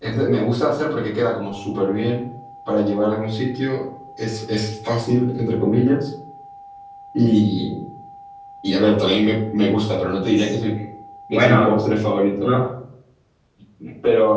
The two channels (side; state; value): both; identical; correlation 1.00